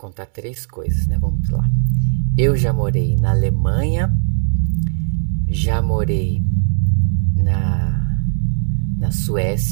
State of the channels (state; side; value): silent; left; 67 dB below the other